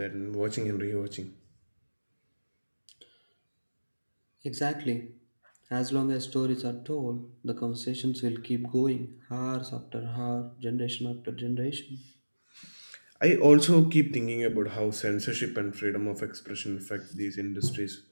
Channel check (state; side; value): inverted; both; correlation -1.00